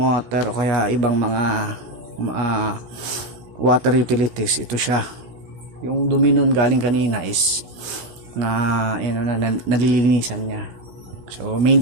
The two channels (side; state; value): left; late; 17 ms